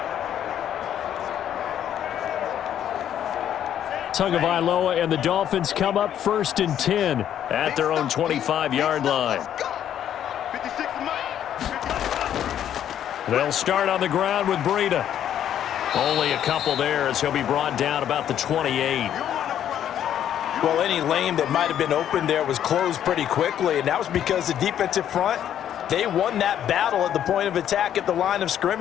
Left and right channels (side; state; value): right; quieter; 10.3 dB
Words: Tagovailoa and the Dolphins come up 1st and 10 at their own 25-yard line. They'll start on the ground with Breida. Only a couple there as he'll be brought down about the 28. Well, any lane that might have been open there was closed pretty quickly, and that was because the defensive front, they won that battle at the point of attack at the line of